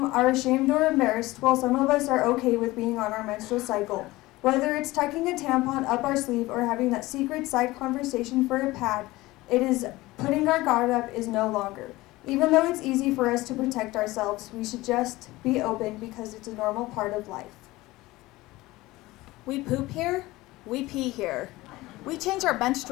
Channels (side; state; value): right; quieter; 19.2 dB